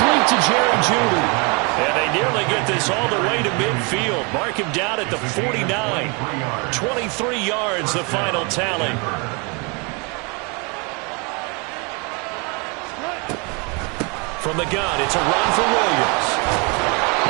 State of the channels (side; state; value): left; quieter; 31.6 dB